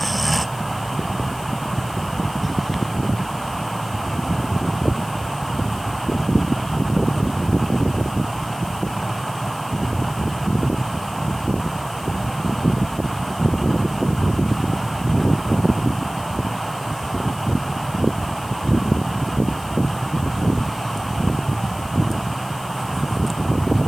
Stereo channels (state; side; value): noise; left; hiss, 18 dB below the sound